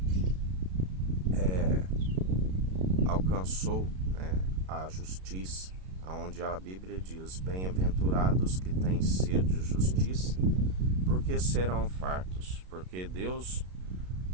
alcançou, né, a justiça, onde a Bíblia diz, bem-aventurados que têm sede de justiça, porque serão fartos, porque Deus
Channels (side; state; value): left; late; 32 ms